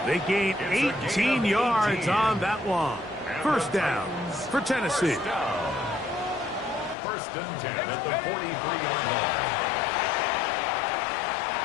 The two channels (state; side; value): drops out; right; at 7.0 s